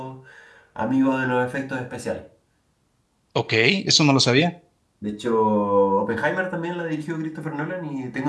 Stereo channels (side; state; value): both; identical; correlation 1.00